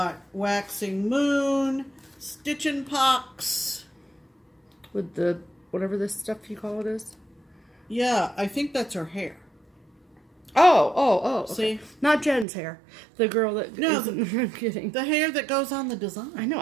Waxing Moon, Stitchin' Pox. With the, whatever this stuff you call it is? Yeah, I think that's her hair. Oh. Okay. See? Not Jen's hair. The girl that... No, I'm kidding. The hair that goes on the design. I know,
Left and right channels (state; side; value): drops out; left; at 12.5 s